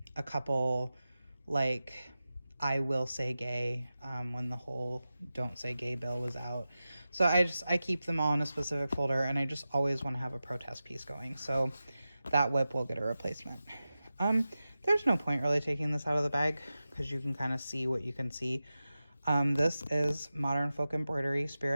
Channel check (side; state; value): both; inverted; correlation -0.94